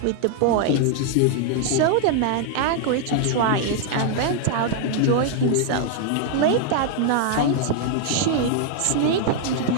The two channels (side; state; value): both; different; correlation 0.00